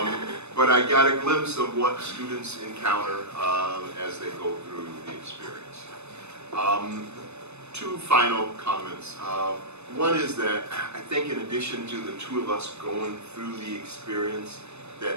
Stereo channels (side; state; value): left; late; 0.81 ms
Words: But I got a glimpse of what students encounter as they go through the experience. Two final comments. One is that I think in addition to the two of us going through the experience,